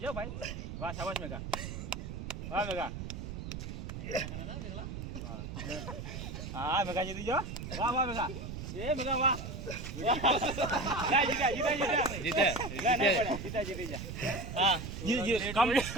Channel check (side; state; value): right; noise; rumble, 7 dB below the sound